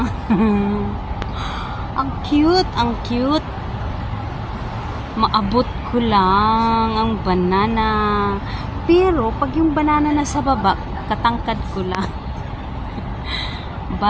Ang cute. Maabot ko lang ang banana. Pero, pag yung banana na sa baba, katangkad ko lang.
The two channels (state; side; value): identical; both; correlation 1.00